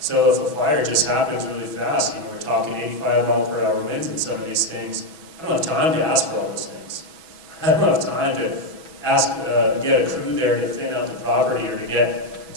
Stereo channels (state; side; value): late; left; 6.1 ms